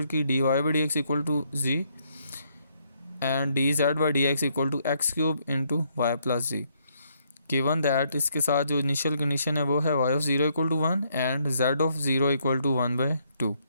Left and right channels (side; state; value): both; inverted; correlation -0.72